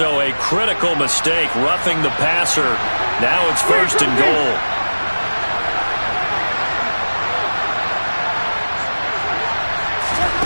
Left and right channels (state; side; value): inverted; both; correlation -1.00